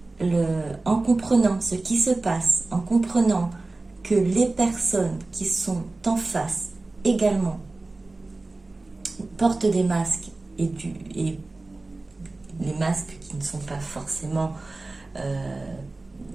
en comprenant ce qui se passe, en comprenant que les personnes qui sont en face également portent des masques et les masques qui ne sont pas forcément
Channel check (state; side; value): quieter; left; 3.2 dB